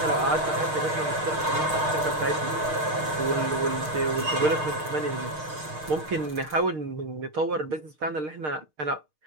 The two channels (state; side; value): late; left; 6.5 ms